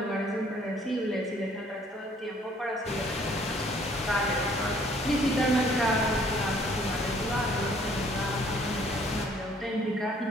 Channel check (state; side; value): normal; both; correlation 0.60